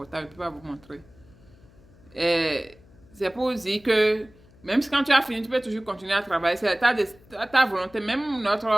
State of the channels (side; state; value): left; noise; hum, 26 dB below the sound